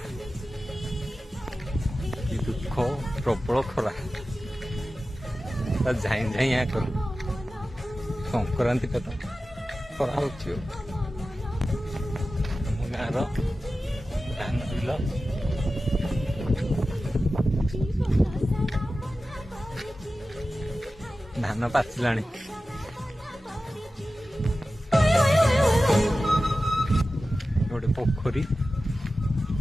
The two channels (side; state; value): both; normal; correlation 0.94